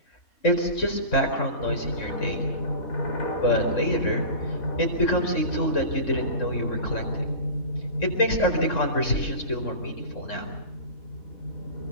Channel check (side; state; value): right; late; 3.6 ms